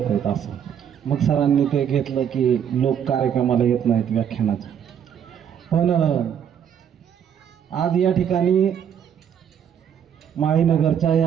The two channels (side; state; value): left; quieter; 8.6 dB